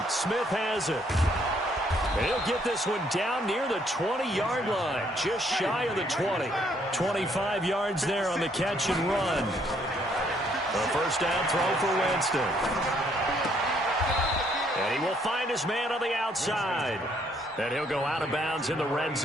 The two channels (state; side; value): normal; both; correlation 0.68